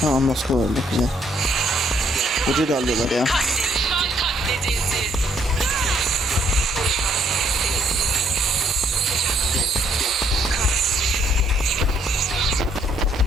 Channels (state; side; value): normal; both; correlation 0.68